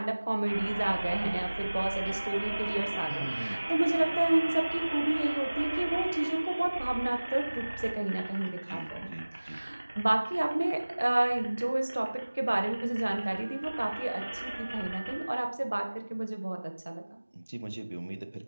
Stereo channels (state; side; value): inverted; both; correlation -1.00